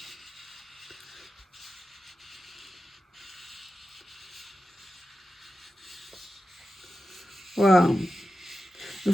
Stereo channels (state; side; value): normal; both; correlation 0.92